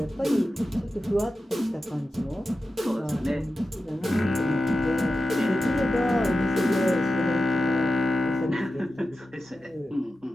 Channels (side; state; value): both; normal; correlation 0.92